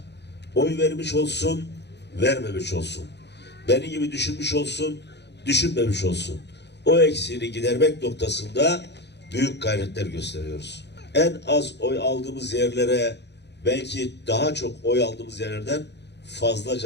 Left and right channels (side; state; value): right; late; 0.50 ms